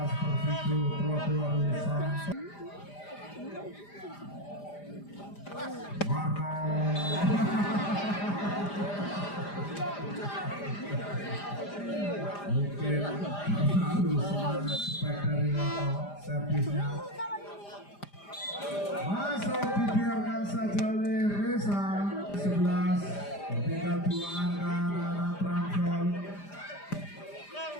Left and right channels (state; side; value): late; right; 5.0 ms